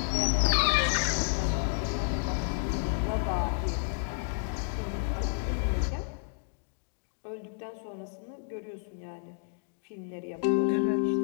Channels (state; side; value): silent; right; digital silence